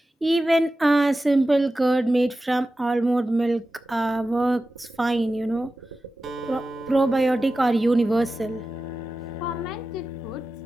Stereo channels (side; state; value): both; normal; correlation 0.94